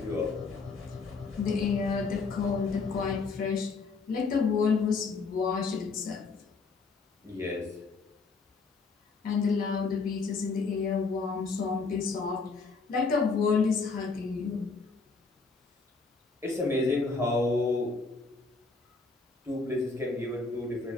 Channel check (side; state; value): right; quieter; 4.3 dB